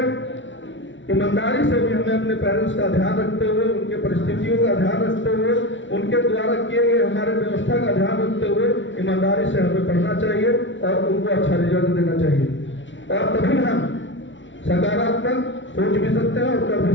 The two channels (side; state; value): right; late; 0.55 ms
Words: ईमानदारी से भी हमें अपने पेरेंट्स का ध्यान रखते हुए, उनके परिस्थितियों का ध्यान रखते हुए, उनके द्वारा किए गए हमारे व्यवस्था का ध्यान रखते हुए ईमानदारी से हमें पढ़ना चाहिए और उनको अच्छा रिजल्ट देना चाहिए, और तभी हम सकारात्मक सोच भी सकते हैं और कर भी